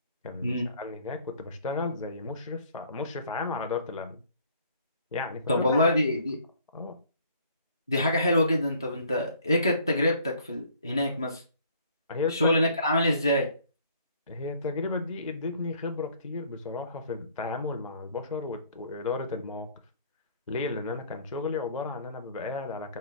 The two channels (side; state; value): both; inverted; correlation -0.58